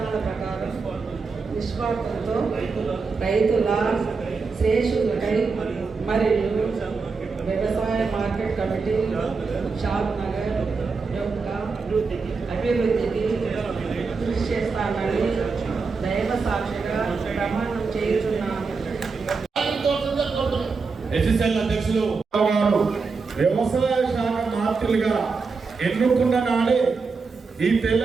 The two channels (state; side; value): quieter; left; 4.6 dB